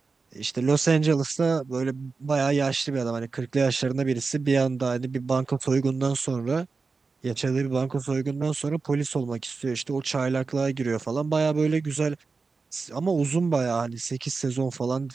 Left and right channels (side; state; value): left; quieter; 4.4 dB